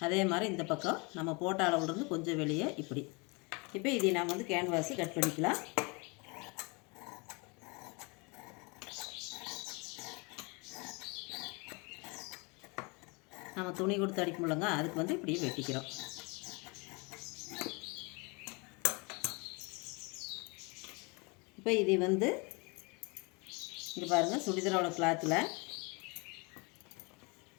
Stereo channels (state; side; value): quieter; right; 29.6 dB